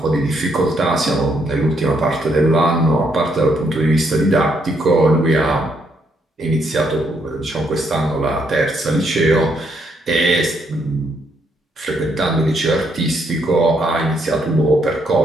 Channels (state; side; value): normal; both; correlation 0.74